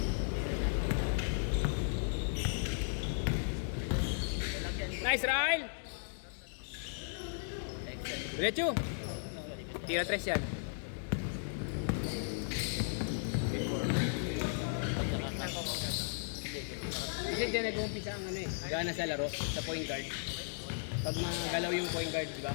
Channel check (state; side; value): silent; right; digital silence